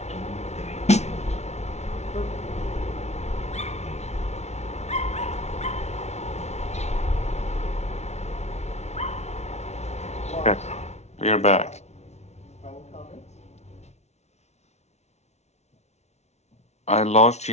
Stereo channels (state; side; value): late; right; 0.32 ms